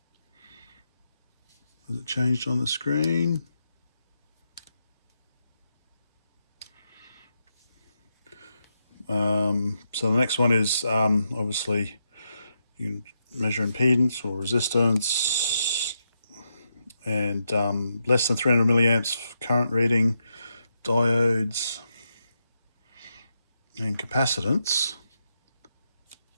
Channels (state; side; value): inverted; both; correlation -0.83